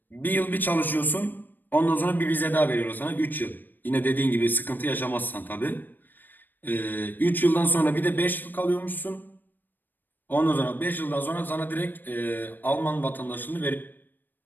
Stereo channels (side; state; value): right; late; 0.091 ms